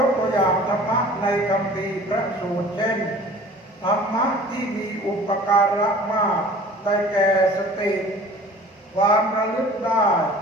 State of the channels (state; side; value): normal; both; correlation 0.45